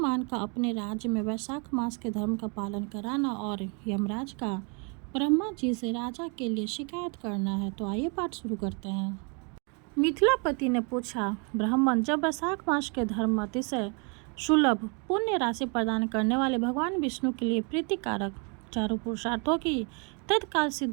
का अपने राज्य में वैशाख मास के धर्म का पालन कराना और यमराज का ब्रह्मा जी से राजा के लिए शिकायत करना है। तो आइए पाठ शुरू करते हैं। मिथिलापति ने पूछा, ब्राह्मण, जब वैशाख मास के धर्म अतिशय सुलभ पुण्य राशि प्रदान करने वाले भगवान विष्णु के लिए प्रीतिकारक चारों पुरुषार्थों की तत्काल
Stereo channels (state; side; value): quieter; left; 35.0 dB